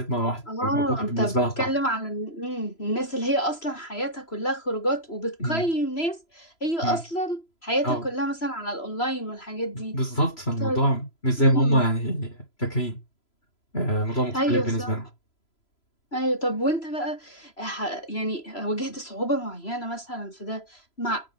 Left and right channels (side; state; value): right; late; 3.0 ms